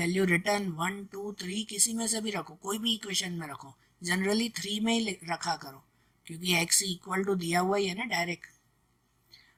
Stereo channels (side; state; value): both; identical; correlation 1.00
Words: रिटर्न 1 2 3 किसी में से भी रखो, कोई भी इक्वेशन में रखो, जनरली 3 में ही रखा करो क्योंकि x इक्वल टू दिया हुआ ही है ना डायरेक्ट।